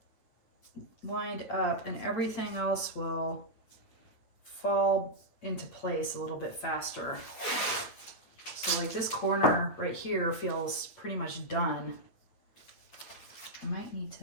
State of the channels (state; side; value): late; right; 9.0 ms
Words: lined up and everything else will fall into place a little bit faster. So like this corner right here feels pretty much done. I might need